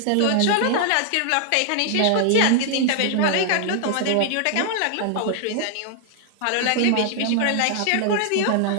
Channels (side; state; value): both; different; correlation 0.00